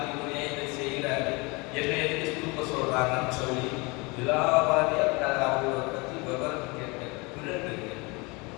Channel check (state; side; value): quieter; right; 27.1 dB